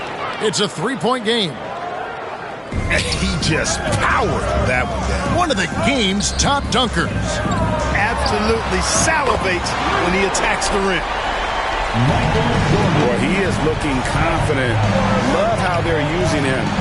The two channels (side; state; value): both; identical; correlation 1.00